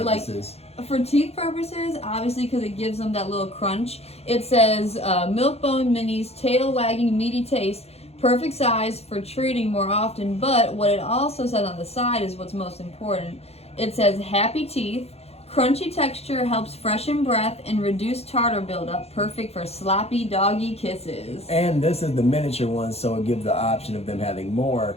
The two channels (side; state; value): right; late; 0.30 ms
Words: Like, for teeth purposes, obviously, because it gives them that little crunch, it says milk bone minis, tail wagging, meaty taste, perfect size for treating more often. But what it also says on the side is what's most important. It says happy teeth. Crunchy texture helps freshen breath and reduce tartar buildup. Perfect for sloppy doggy kisses. And this is the miniature one, so it gives the option of them having more